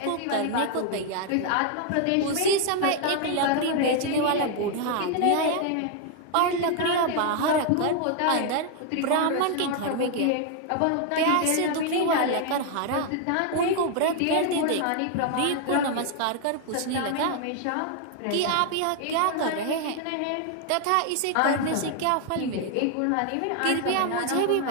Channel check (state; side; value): different; both; correlation 0.00